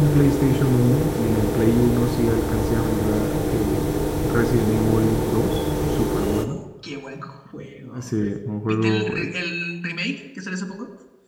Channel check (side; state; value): both; identical; correlation 1.00